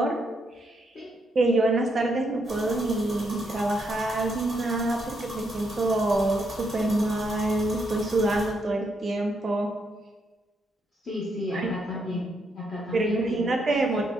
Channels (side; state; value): both; normal; correlation 0.77